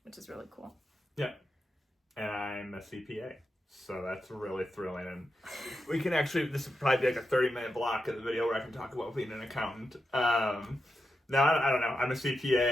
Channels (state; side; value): normal; both; correlation 0.88